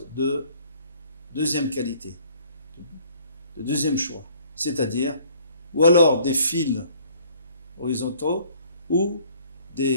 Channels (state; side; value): inverted; both; correlation -0.58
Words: de deuxième qualité, de deuxième choix, c'est-à-dire, ou alors des fils horizontaux, ou